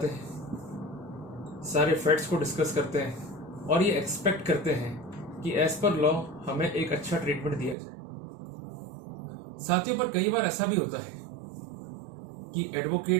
हैं, सारे फैक्ट्स को डिस्कस करते हैं और ये एक्सपेक्ट करते हैं कि एज पर लॉ हमें एक अच्छा ट्रीटमेंट दिया जाए। साथियों, पर कई बार ऐसा भी होता है कि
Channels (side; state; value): left; drops out; at 7.8 s